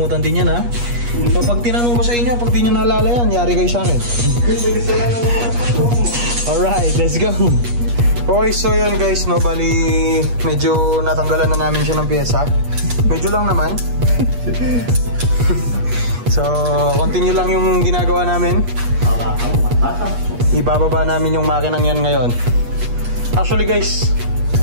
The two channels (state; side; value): late; left; 8.4 ms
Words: din yan ha. So pag tinanong ko sa inyo, pag di nyo naalala yan, yari kayo sa akin. Alright, let's go. Okay, so yun guys, no, bali medyo natanggalan na namin siya ng pyesa. Medyo lang naman. So, continue lang yung ginagawa namin. Ibababa namin yung makinang yan ngayon. Actually guys,